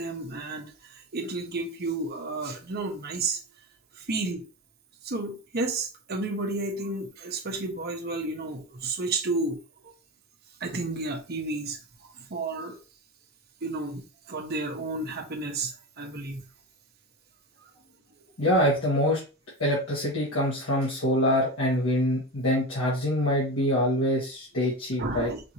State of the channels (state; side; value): normal; both; correlation 0.23